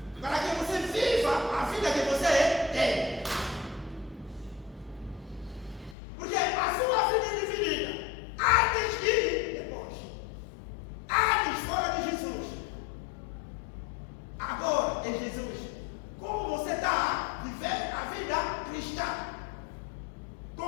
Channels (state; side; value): drops out; right; at 6.0 s